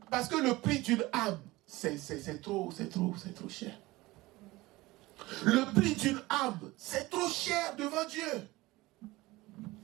parce que le prix d'une âme, c'est trop cher. Le prix d'une âme, c'est trop cher devant Dieu.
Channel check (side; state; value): left; quieter; 20.0 dB